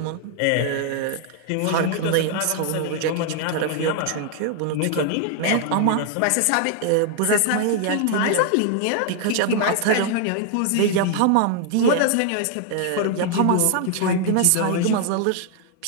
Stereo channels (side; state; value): both; different; correlation 0.00